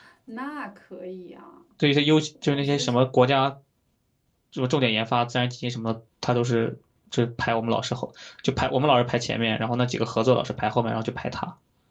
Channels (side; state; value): both; identical; correlation 1.00